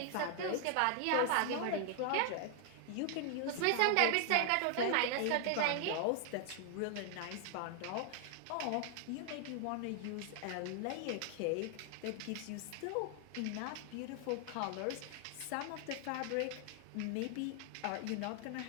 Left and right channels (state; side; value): different; both; correlation 0.00